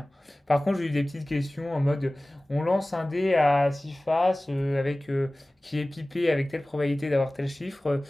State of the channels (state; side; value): normal; both; correlation 0.98